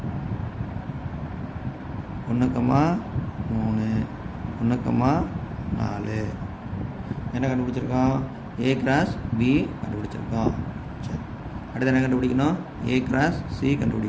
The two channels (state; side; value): identical; both; correlation 1.00